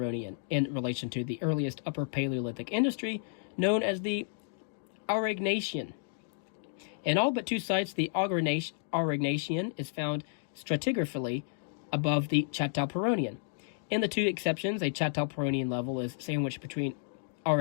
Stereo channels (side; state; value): right; silent; digital silence